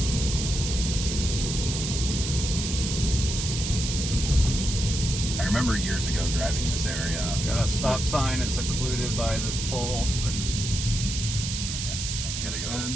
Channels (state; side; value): noise; right; hiss, 4 dB below the sound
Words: I remember years ago driving this area. Got a stop sign. It's occluded by this pole. But You gotta go